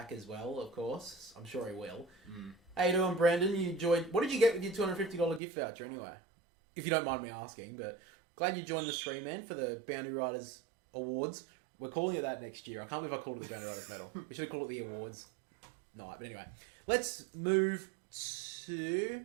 as well, of course. I'm sure he will. How you doing, Brandon? You enjoyed... What did you get with your $250 gift voucher anyway? If you don't mind me asking, but glad you joined the stream, man, for the Boundary Riders Awards. We're calling it that next year. I can't believe I called it the Boundary Riders Medal. We should have called it the Awards night. But anyway, let's move to... Did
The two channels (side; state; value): left; drops out; at 5.4 s